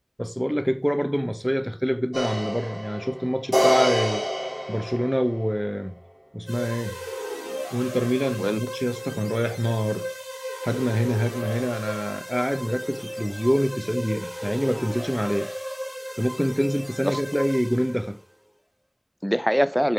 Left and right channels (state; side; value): identical; both; correlation 1.00